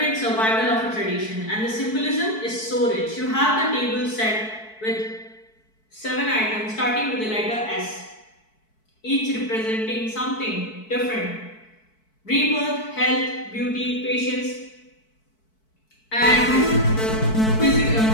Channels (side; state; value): right; late; 4.6 ms